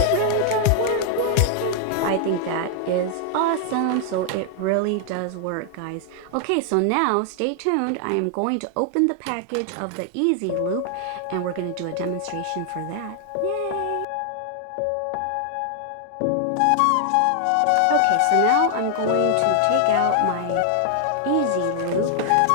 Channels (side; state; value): both; different; correlation 0.00